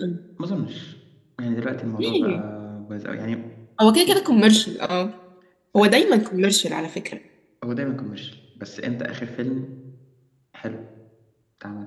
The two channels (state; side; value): identical; both; correlation 1.00